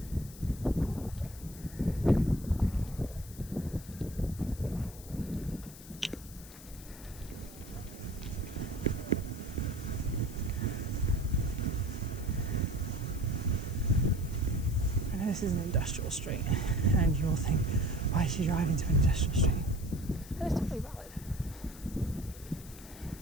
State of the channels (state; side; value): noise; left; hiss, 17 dB below the sound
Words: I know this is an industrial street, and you'll think, why is she driving into an industrial street? And it's totally valid.